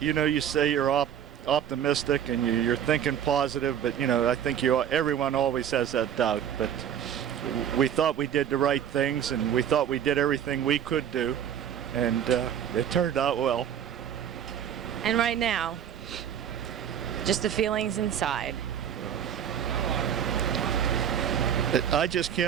you say you're optimistic and you're thinking positive, but I think everyone always has that doubt. But we thought we did the right things, and we thought we did everything we could do, and it turned out well. And right now, just the feelings inside. I just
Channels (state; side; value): quieter; left; 9.3 dB